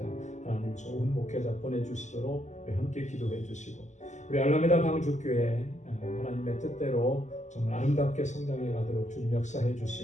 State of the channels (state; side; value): late; right; 0.34 ms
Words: 하나님 좋은 목회자 보내주시도록 우리 함께 기도해 주시고, 우리 알라메다 방주교회 하나님의 뜻대로 정말 아름답게 성장해 가도록 주님 역사해